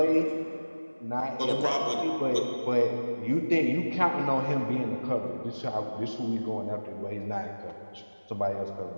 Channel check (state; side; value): inverted; both; correlation -1.00